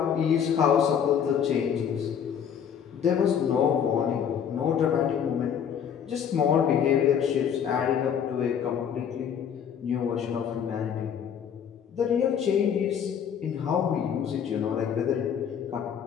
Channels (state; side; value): quieter; right; 8.1 dB